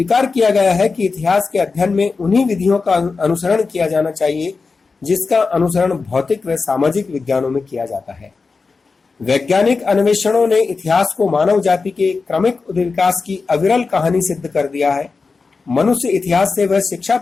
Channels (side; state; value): right; quieter; 4.4 dB